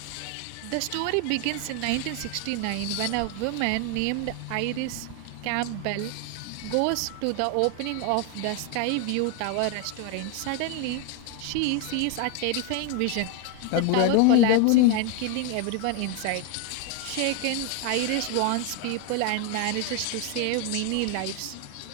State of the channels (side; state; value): both; different; correlation 0.01